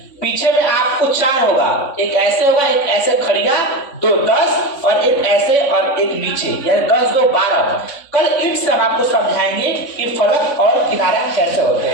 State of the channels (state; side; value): late; right; 3.5 ms